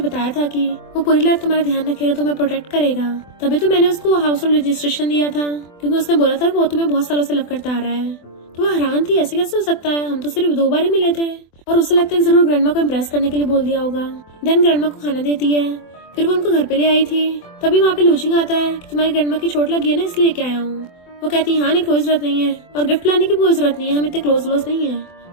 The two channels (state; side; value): late; right; 24 ms